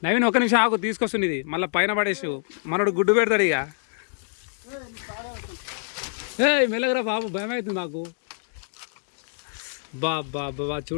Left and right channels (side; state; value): right; silent; digital silence